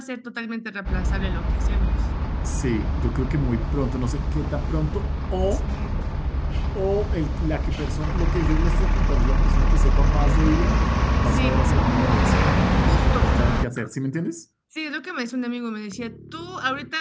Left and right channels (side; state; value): both; identical; correlation 1.00